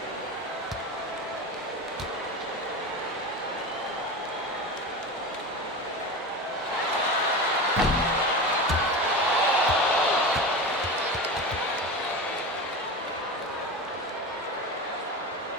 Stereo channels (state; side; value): normal; both; correlation 0.26